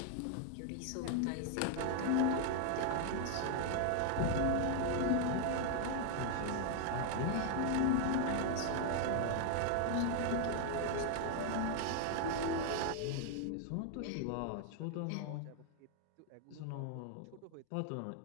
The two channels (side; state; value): both; different; correlation 0.00